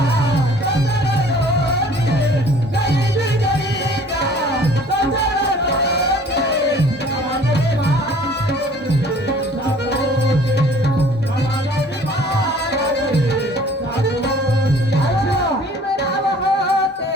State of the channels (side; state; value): both; normal; correlation 0.52